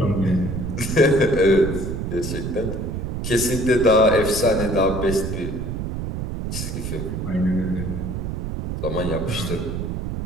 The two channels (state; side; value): noise; right; rumble, 4 dB below the sound